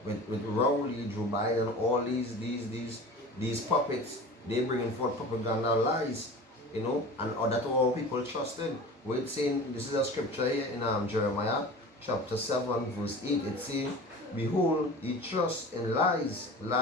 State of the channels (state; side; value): normal; both; correlation 0.37